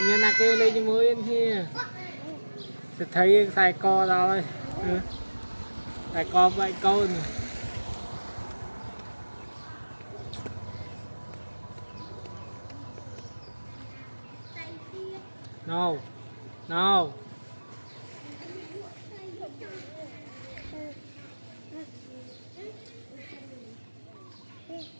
nhân là kêu lên cho mới yên kia sẽ thấy xài co rồi xài co vậy câu này no no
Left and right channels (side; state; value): both; inverted; correlation -1.00